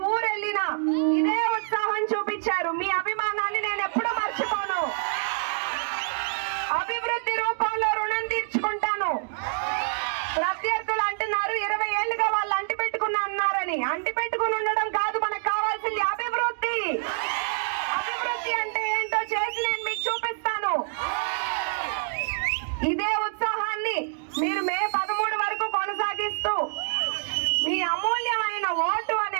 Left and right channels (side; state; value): left; silent; digital silence